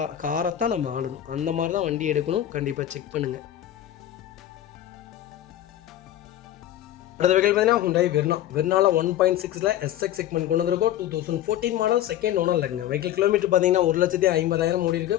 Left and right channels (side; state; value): right; quieter; 12.2 dB